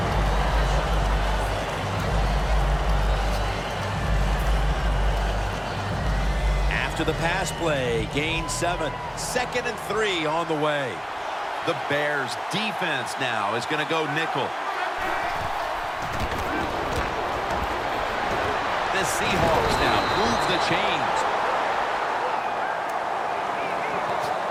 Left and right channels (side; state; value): both; identical; correlation 1.00